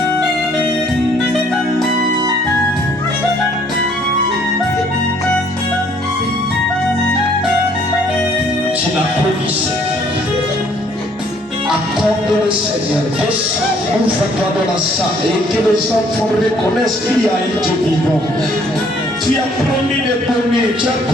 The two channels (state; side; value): normal; both; correlation 0.62